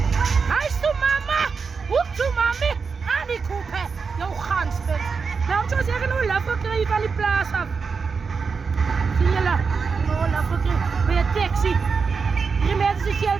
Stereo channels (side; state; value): left; quieter; 5.3 dB